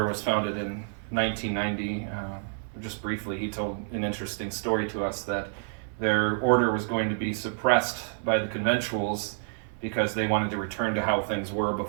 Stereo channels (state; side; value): silent; left; 57 dB below the other